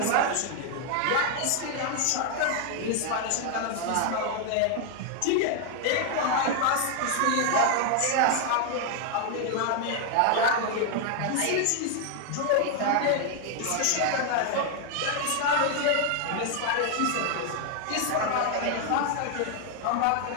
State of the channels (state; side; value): different; both; correlation 0.00